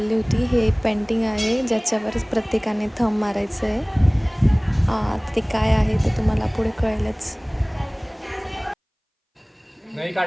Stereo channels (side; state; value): both; identical; correlation 1.00